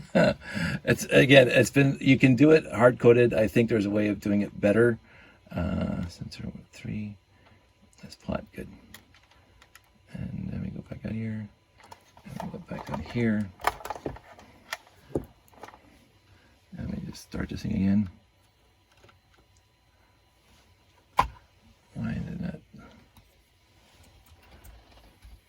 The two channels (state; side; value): identical; both; correlation 1.00